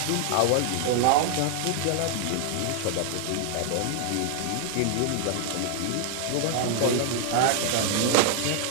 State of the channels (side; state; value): both; different; correlation 0.00